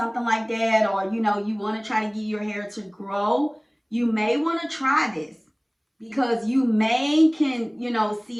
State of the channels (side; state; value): both; identical; correlation 1.00